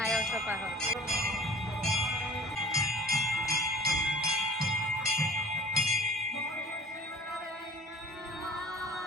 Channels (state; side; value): normal; both; correlation 0.45